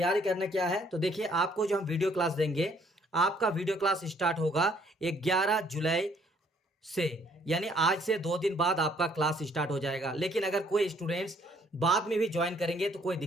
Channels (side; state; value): both; normal; correlation 0.64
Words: करना क्या है, तो देखिए, आपको जो हम वीडियो क्लास देंगे, आपका वीडियो क्लास स्टार्ट होगा 11 जुलाई से, यानी आज से 2 दिन बाद आपका क्लास स्टार्ट हो जाएगा। लेकिन अगर कोई स्टूडेंट्स बाद में भी ज्वाइन करेंगे तो कोई